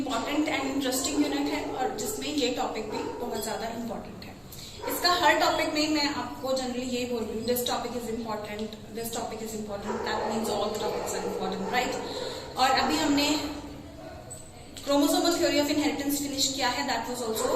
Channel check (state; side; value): identical; both; correlation 1.00